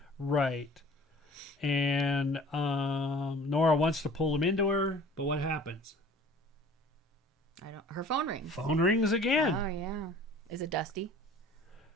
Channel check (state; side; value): normal; both; correlation 0.47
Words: Right. And Nora wants to pull him into her, but what happens? Her phone rings. Phone rings again. Oh, yeah. Is it Dusty?